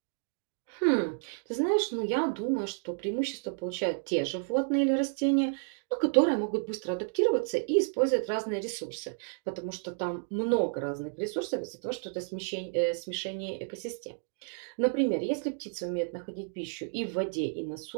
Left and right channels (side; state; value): left; silent; digital silence